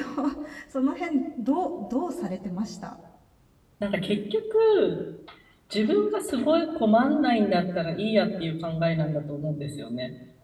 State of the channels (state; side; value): identical; both; correlation 1.00